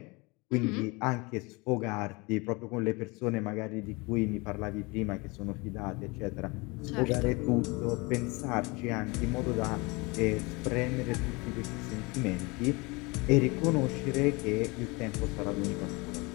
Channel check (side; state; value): right; quieter; 26.2 dB